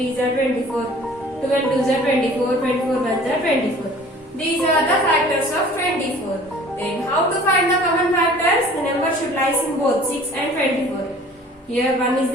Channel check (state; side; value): normal; both; correlation 0.49